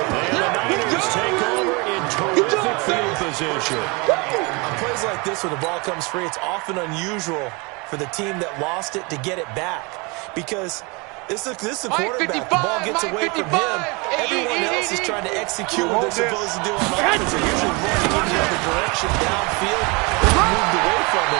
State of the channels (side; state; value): left; quieter; 28.3 dB